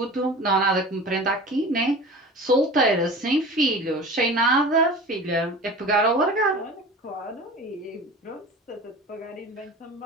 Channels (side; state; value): both; normal; correlation 0.37